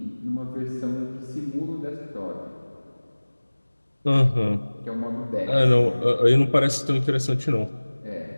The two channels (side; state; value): both; inverted; correlation -1.00